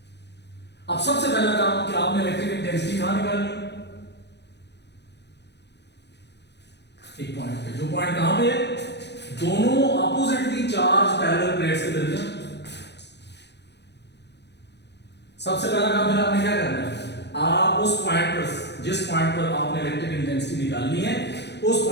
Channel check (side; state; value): right; late; 0.50 ms